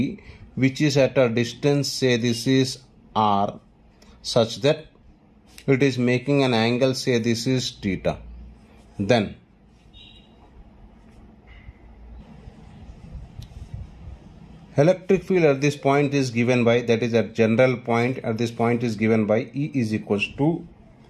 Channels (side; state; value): both; identical; correlation 1.00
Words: which is at a distance say this is R, such that it is making an angle say this is theta. Then electric field at this point is given by, that is at general point at this point is given by E is equals to